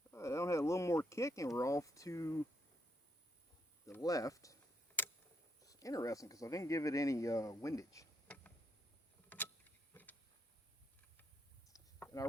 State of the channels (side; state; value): both; normal; correlation 0.77